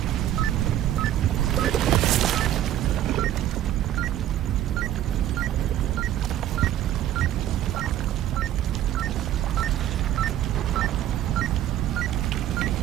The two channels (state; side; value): quieter; left; 12.2 dB